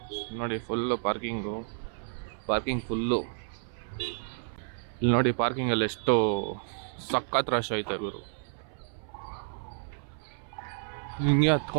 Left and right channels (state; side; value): silent; left; 57 dB below the other